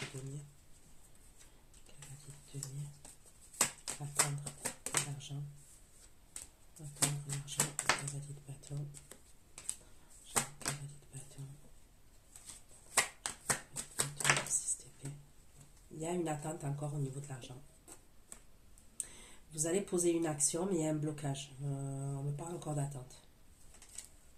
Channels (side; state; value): both; identical; correlation 1.00